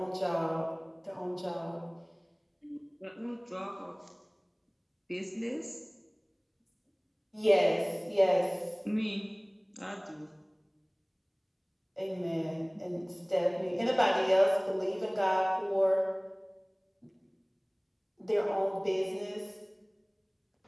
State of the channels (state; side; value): identical; both; correlation 1.00